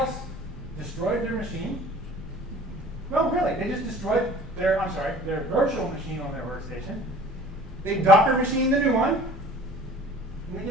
destroyed their machine. No, really, they just destroyed their virtual machine on their workstation. They Docker machined the new one, and they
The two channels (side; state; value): right; noise; rumble, 22 dB below the sound